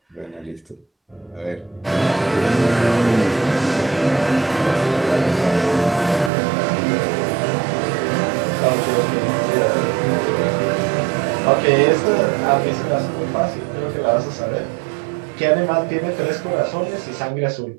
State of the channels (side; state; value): left; drops out; at 6.3 s